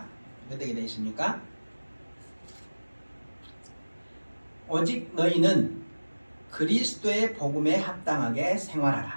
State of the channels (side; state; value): both; inverted; correlation -1.00